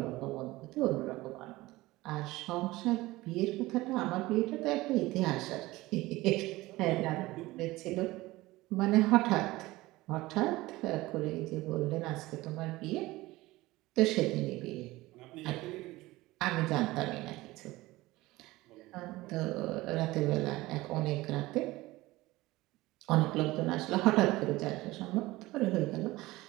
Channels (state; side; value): quieter; left; 19.1 dB